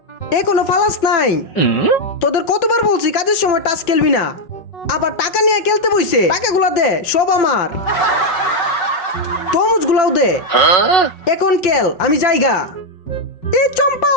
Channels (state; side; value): late; right; 5.4 ms